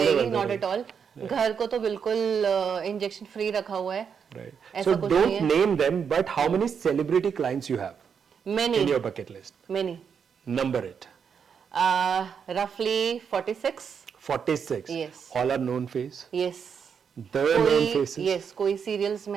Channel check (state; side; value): quieter; left; 6.9 dB